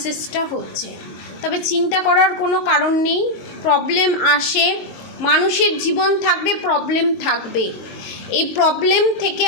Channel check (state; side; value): late; right; 22 ms